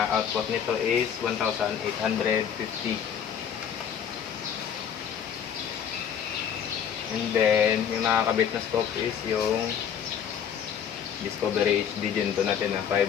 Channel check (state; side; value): quieter; right; 8.3 dB